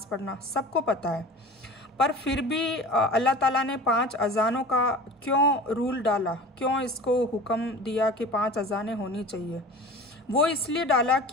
पढ़ना, सबको पता है। पर फिर भी अल्लाह ताला ने 5 अज़ानों का क्यों रूल डाला, क्यों इसको हुक्म दिया कि 5 अज़ानें होनी चाहिए? वो इसलिए डाला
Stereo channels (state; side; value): normal; both; correlation 0.38